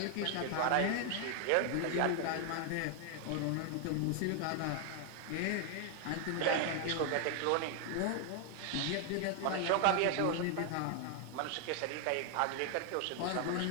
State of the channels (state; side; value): different; both; correlation 0.00